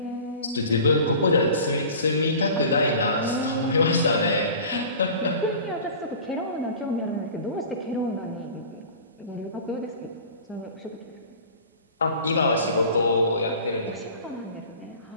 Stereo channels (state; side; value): inverted; both; correlation -0.40